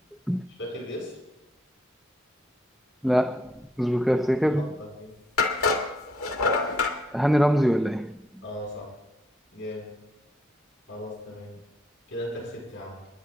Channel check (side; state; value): both; normal; correlation 0.72